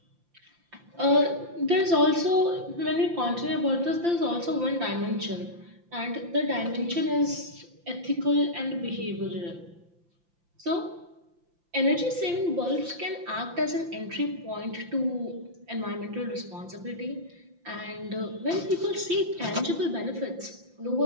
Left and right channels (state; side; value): late; left; 5.8 ms